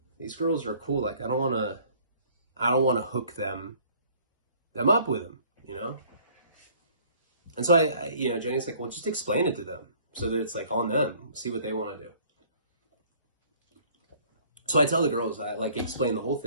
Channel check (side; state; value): both; inverted; correlation -0.56